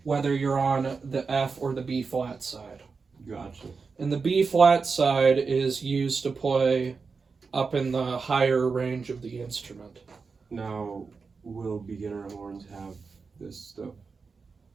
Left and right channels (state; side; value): quieter; left; 4.8 dB